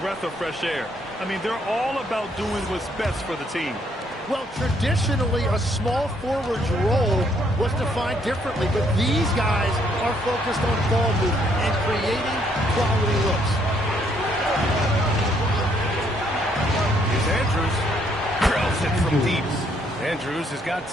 of fresh air. I mean, they're all about doing what's best for the team. Well, traditionally, a small forward's role was defined differently, but these guys are focused on ball movement and creating quality looks. Here's Andrews. Drills it from deep. Andrews has got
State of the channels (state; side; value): normal; both; correlation 0.69